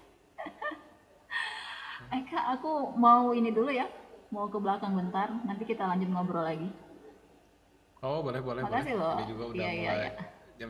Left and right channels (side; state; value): both; identical; correlation 1.00